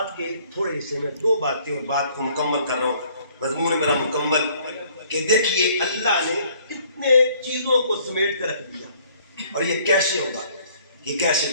کے تھوڑے حصے میں دو باتیں، اور بات کو مکمل کر رہا ہوں، مضمون میرا مکمل، کہ دیکھیے اللہ نے کتنے چیزوں کو سمیٹ کر رکھ دیا. اور یہ کیسے ہوگا، یہ کیسے؟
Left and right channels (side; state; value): both; inverted; correlation -0.60